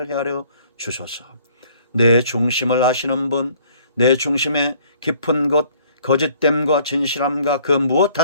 헤아려 주소서. 내 중심을 아시는 분, 내 중심의 깊은 곳, 거짓됨과 진실함과 그 무엇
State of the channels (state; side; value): inverted; both; correlation -0.59